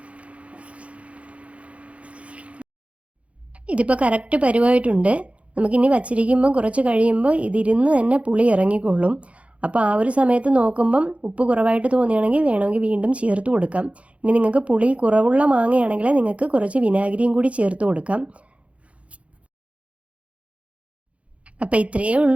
ഇതിപ്പോൾ കറക്റ്റ് പരുവായിട്ടുണ്ട്. നമുക്കിനി വച്ചിരിക്കുമ്പോൾ കുറച്ച് കഴിയുമ്പോൾ ഇതിരുന്ന് തന്നെ പുളി ഇറങ്ങിക്കൊള്ളും. അപ്പോൾ ആ ഒരു സമയത്ത് നോക്കുമ്പം ഉപ്പ് കുറവായിട്ട് തോന്നുകയാണെങ്കിൽ വേണമെങ്കിൽ വീണ്ടും ചേർത്ത് കൊടുക്കാം. ഇനി നിങ്ങൾക്ക് പുളി കുറവുള്ള മാങ്ങയാണെങ്കിൽ നിങ്ങൾക്ക് കുറച്ച് വിനാഗിരിയും കൂടി ചേർത്ത് കൊടുക്കാം. അപ്പോൾ ഇത്രയേ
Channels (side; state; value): left; late; 0.063 ms